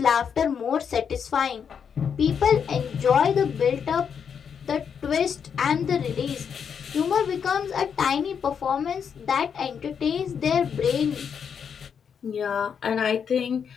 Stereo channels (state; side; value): quieter; right; 7.1 dB